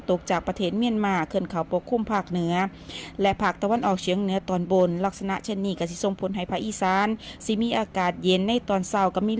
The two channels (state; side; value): identical; both; correlation 1.00